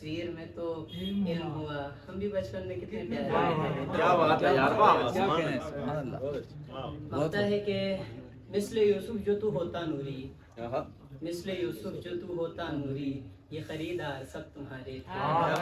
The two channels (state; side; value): identical; both; correlation 1.00